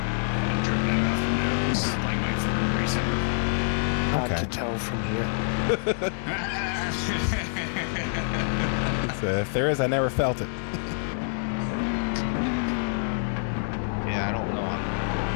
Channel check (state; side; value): silent; right; digital silence